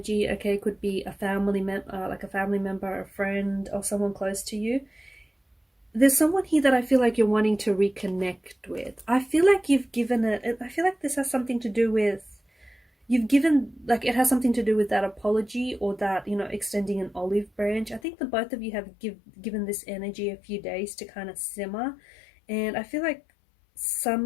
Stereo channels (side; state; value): right; drops out; at 18.0 s